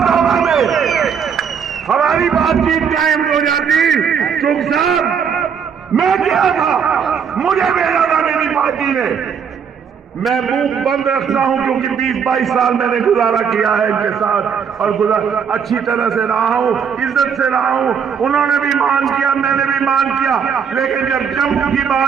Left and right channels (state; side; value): quieter; left; 7.0 dB